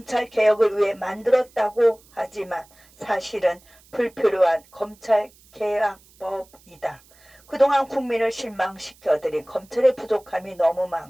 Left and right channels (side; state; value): right; noise; hiss, 28 dB below the sound